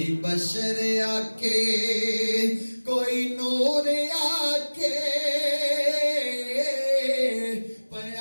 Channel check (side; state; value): both; inverted; correlation -1.00